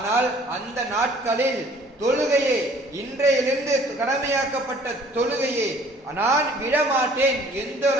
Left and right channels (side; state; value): both; normal; correlation 0.55